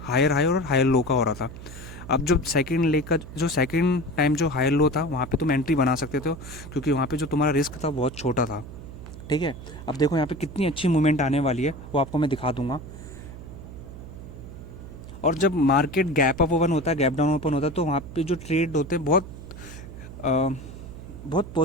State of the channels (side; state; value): right; noise; hum, 13 dB below the sound